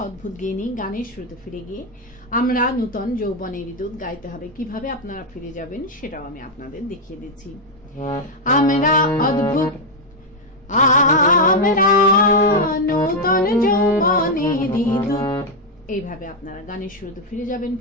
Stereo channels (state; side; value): normal; both; correlation 0.02